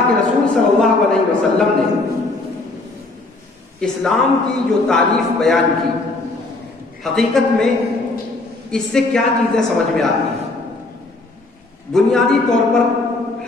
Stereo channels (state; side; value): quieter; right; 3.2 dB